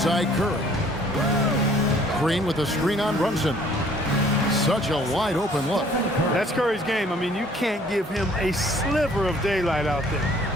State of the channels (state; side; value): normal; both; correlation 0.57